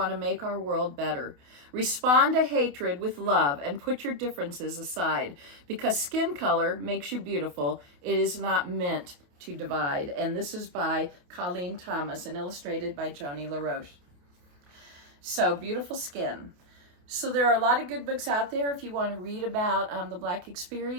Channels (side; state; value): left; late; 28 ms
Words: to make our world better. Respond to hatred with love and put your differences aside. Because skin color makes you beautiful. It is not meant to divide. And this is by Colleen Thomas and illustrated by Joni LaRoche. So, Beautiful Skin. So there are a lot of good books out there if you want to read about the Black